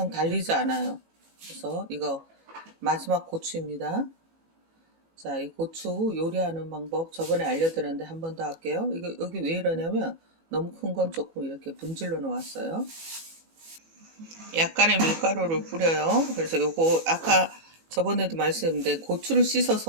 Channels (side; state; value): left; late; 18 ms